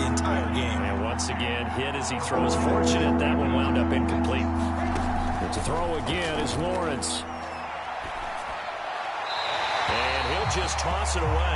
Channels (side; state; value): both; identical; correlation 1.00